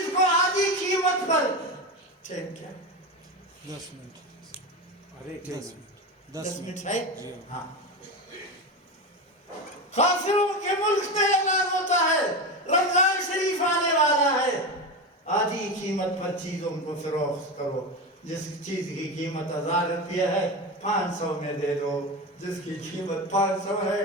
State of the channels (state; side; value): normal; both; correlation 0.20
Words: کو آدھی قیمت پر۔ کیا 10 منٹ، 10 منٹ ہے؟ ہاں، کافروں کے ملک میں اعلان ہوتا ہے رمضان شریف آنے والا ہے، آدھی قیمت پر چیزوں کو فروخت کرو۔ جس چیز کی قیمت 1000 روپیہ ہے 500 میں دے دو، جس کی قیمت 500 ہے